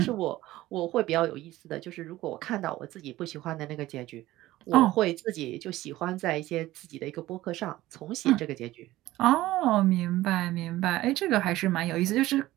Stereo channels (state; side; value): quieter; left; 16.5 dB